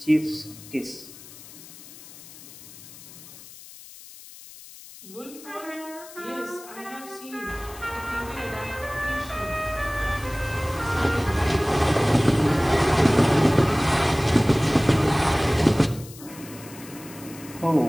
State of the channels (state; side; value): noise; left; hiss, 18 dB below the sound